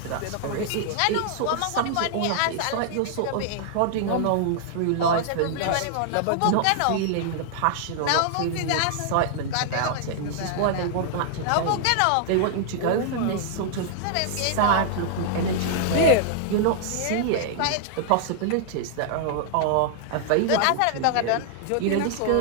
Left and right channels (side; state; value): both; different; correlation -0.01